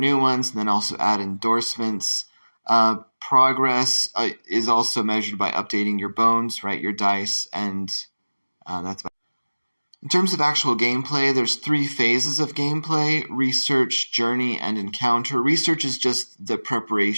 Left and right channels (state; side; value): inverted; both; correlation -1.00